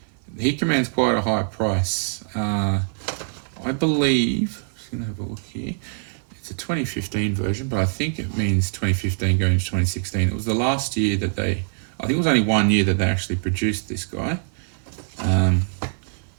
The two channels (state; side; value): silent; left; 56 dB below the other